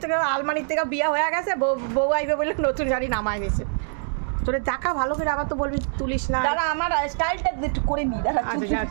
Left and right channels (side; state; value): left; silent; digital silence